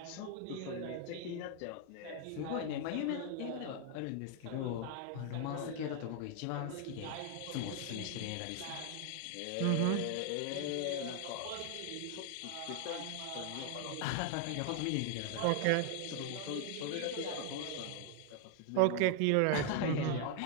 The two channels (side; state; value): both; different; correlation 0.00